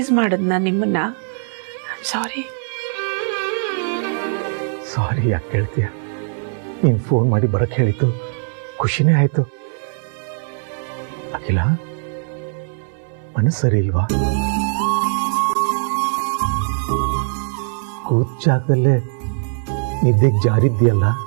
ಮಾಡದ್ನ ನಿಮ್ಮನ್ನ. ಸಾರಿ. ಸಾರಿ ಯಾಕೆ ಕೇಳ್ತೀಯ? ನೀನು ಫೋನ್ ಮಾಡಿ ಬರಕ್ಕೆ ಹೇಳಿತ್ತು, ಖುಷಿನೇ ಆಯಿತು. ಅಖಿಲ, ಮನಸ್ಸು ಸರಿ ಇಲ್ವಾ? ಕೂತ್ ಜಾಗದಲ್ಲೇ ನಿದ್ದೆಗೆ ಜಾರಿದ್ಯಲ್ಲ,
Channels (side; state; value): left; silent; 62 dB below the other